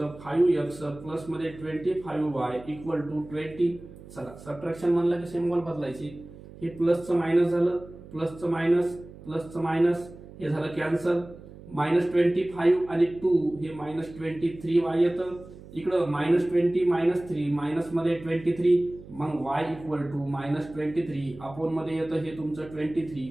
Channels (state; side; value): noise; right; hum, 18 dB below the sound